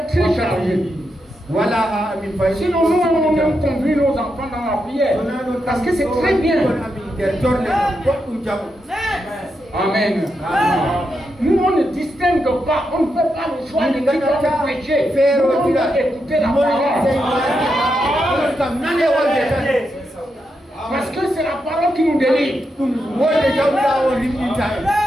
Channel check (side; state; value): both; normal; correlation 0.84